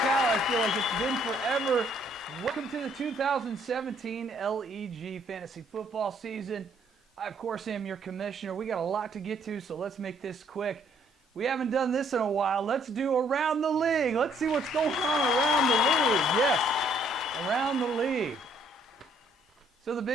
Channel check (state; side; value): normal; both; correlation 0.65